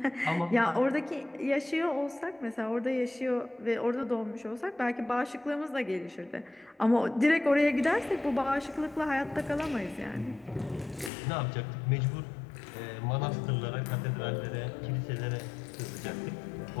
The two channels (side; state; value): right; drops out; at 11.1 s